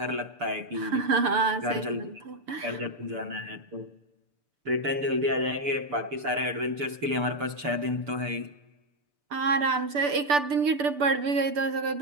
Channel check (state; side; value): late; left; 6.8 ms